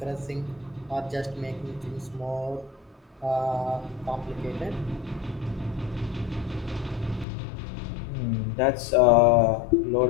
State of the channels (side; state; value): right; drops out; at 7.2 s